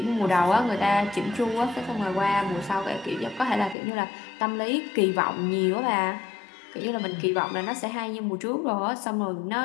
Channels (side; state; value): right; drops out; at 3.8 s